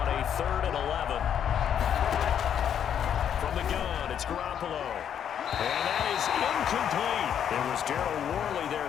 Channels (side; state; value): right; quieter; 8.9 dB